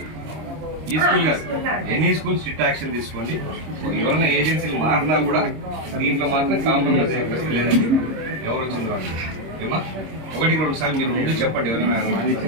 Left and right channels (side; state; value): left; late; 26 ms